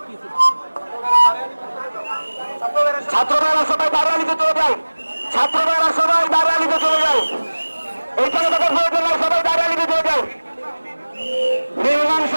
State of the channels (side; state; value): both; inverted; correlation -1.00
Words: ছাত্ররা সবাই দাঁড়ালিতে চলে যায়, ছাত্ররা সবাই দাঁড়ালিতে চলে যায়, এইখানে তাদের প্রয়োজন নাই, সবাই দাঁড়ালিতে চলে যায়। নির্মাণ